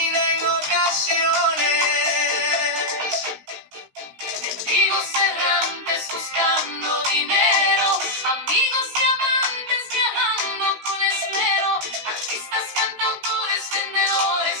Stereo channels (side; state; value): left; late; 16 ms